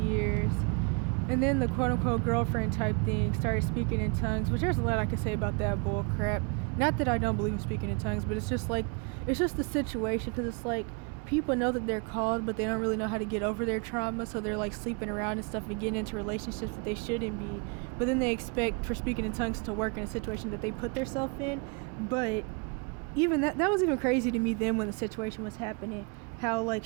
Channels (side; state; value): left; quieter; 34.3 dB